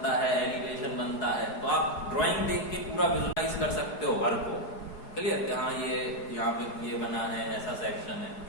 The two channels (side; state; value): right; late; 4.8 ms